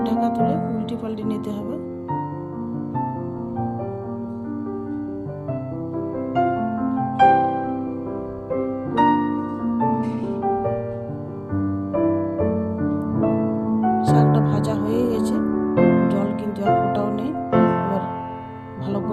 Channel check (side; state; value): both; identical; correlation 1.00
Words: ঢাকা তুলে উল্টে পাল্টে নিতে হবে। শাকটা ভাজা হয়ে গেছে, জল কিন্তু এক ফোঁটাও নেই। এবার ভালো